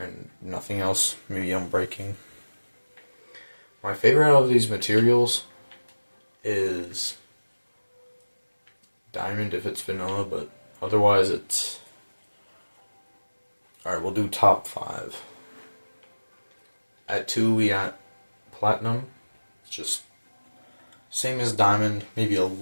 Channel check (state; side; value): inverted; both; correlation -1.00